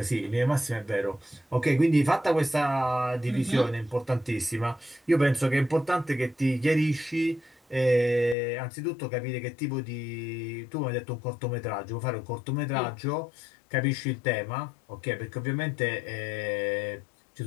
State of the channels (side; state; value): right; drops out; at 8.3 s